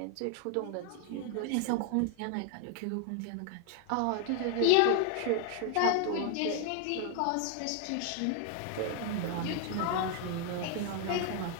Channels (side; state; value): both; different; correlation 0.00